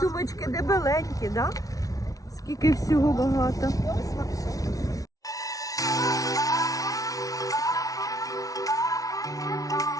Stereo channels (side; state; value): right; late; 0.18 ms